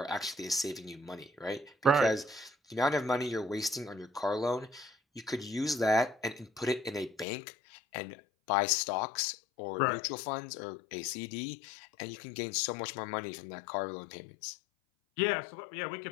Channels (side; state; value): right; drops out; at 7.2 s